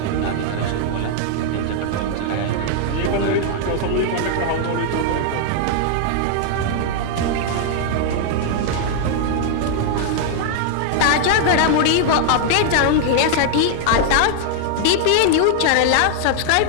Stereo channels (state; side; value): different; both; correlation -0.01